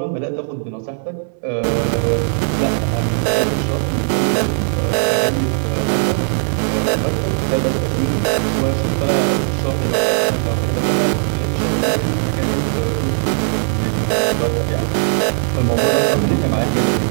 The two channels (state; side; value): silent; left; digital silence